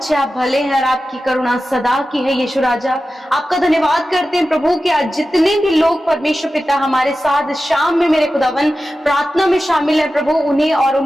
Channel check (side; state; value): both; normal; correlation 0.93